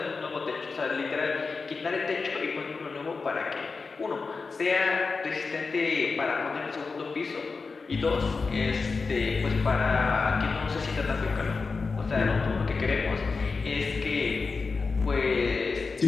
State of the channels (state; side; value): quieter; right; 4.4 dB